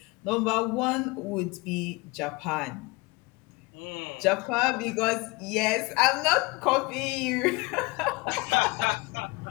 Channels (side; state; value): right; quieter; 25.3 dB